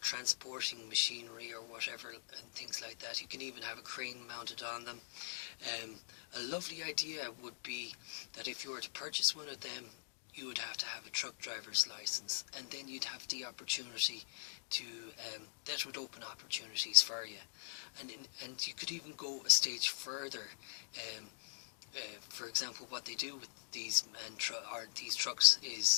machinery or whatever, and things like that. You can even have a crane mounted on them. A lovely idea would be that if you were to purchase one of them, you would have to have a truck driver's license, and then you'd have the opportunity to, that would open opportunities for you. And you could even go a stage further. For example, what they do with these trucks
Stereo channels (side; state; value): right; silent; digital silence